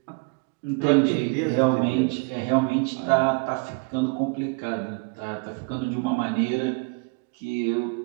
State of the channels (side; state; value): left; quieter; 33.1 dB